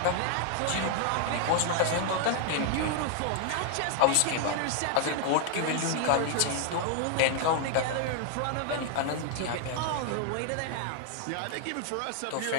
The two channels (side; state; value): both; different; correlation 0.00